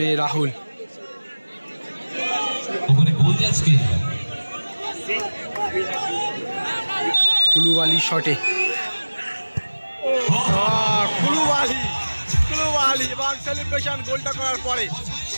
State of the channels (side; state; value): both; inverted; correlation -1.00